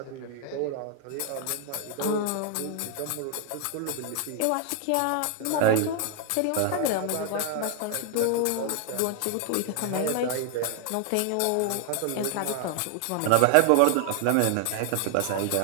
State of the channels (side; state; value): both; different; correlation 0.00